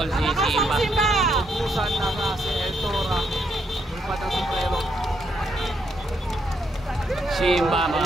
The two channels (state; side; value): normal; both; correlation 0.76